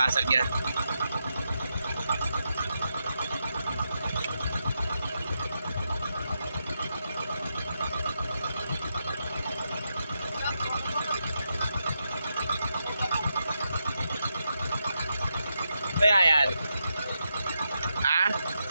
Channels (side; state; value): both; inverted; correlation -0.85